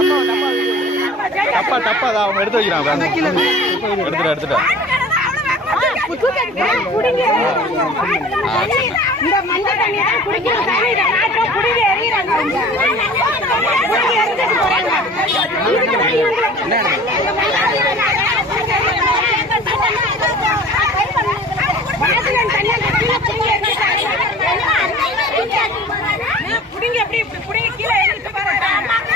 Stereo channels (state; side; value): normal; both; correlation 0.44